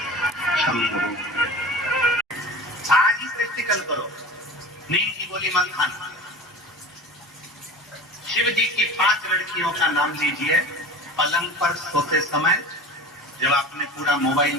शंभो। आज ही प्रैक्टिकल करो, नींद की गोली मत खाना। शिव जी की 5 लड़कियों का नाम लीजिए। पलंग पर सोते समय जब आपने पूरा मोबाइल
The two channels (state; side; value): normal; both; correlation 0.35